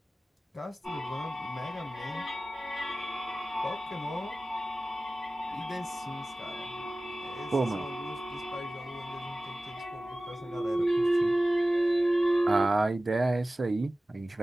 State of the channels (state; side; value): normal; both; correlation 0.97